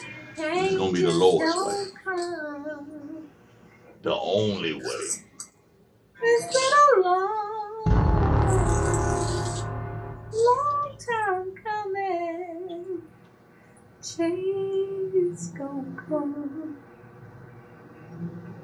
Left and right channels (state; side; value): identical; both; correlation 1.00